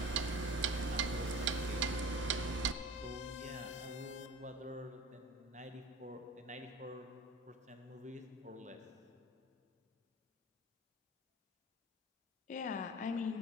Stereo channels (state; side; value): normal; both; correlation 0.37